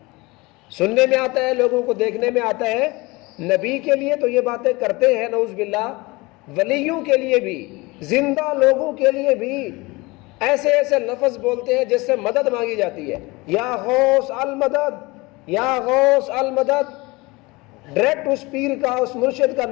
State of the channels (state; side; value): quieter; right; 23.7 dB